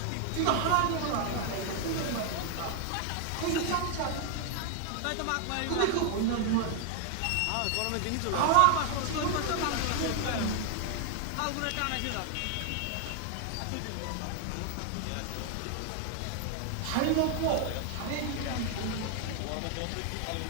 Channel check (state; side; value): different; both; correlation 0.00